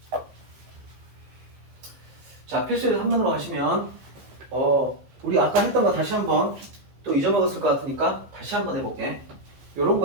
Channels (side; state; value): left; late; 15 ms